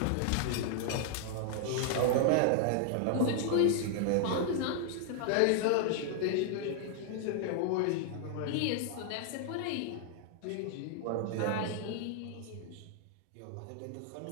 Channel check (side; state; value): both; different; correlation 0.00